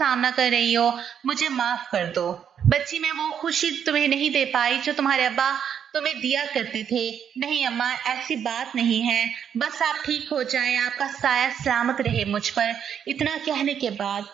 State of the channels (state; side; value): quieter; left; 8.3 dB